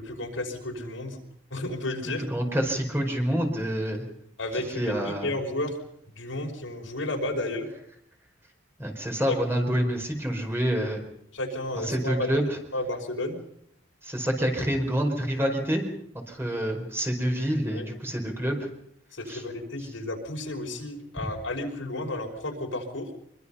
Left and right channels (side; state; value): both; normal; correlation 0.60